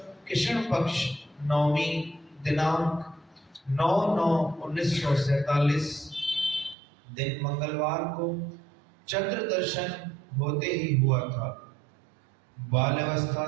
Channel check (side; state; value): left; drops out; at 6.8 s